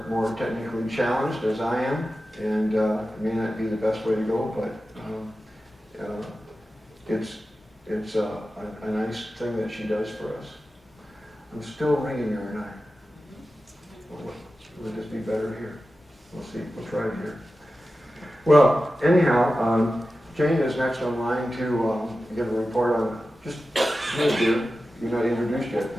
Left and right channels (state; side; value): normal; both; correlation 0.93